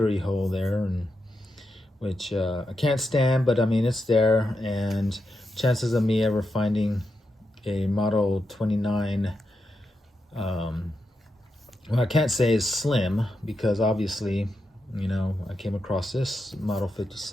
hole there, and which I can't stand, but I mean it's there, and chances of me ever finding a Model 29, well, I can't say is slim, because obviously, you know, I came across this Model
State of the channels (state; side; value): normal; both; correlation 0.86